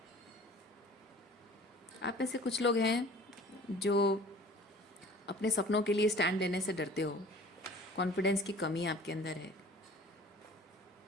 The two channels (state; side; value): normal; both; correlation 0.46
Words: आप में से कुछ लोग हैं जो अपने सपनों के लिए स्टैंड लेने से डरते हो, कॉन्फिडेंस की कमी आपके अंदर है।